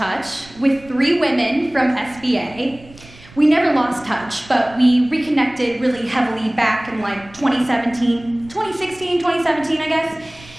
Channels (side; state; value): right; noise; rumble, 22 dB below the sound